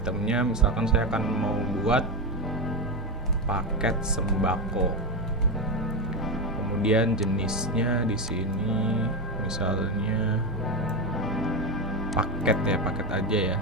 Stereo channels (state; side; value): normal; both; correlation 0.13